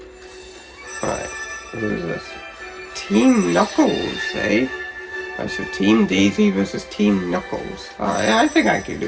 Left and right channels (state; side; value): identical; both; correlation 1.00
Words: Alright, who is this? Team Knuckles, eh? Alright, so Team Daisy versus Team Knuckles. Alright, I think I can